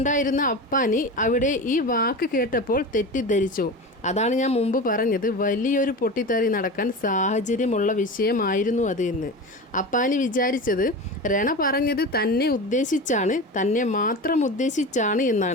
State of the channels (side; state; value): both; normal; correlation 0.28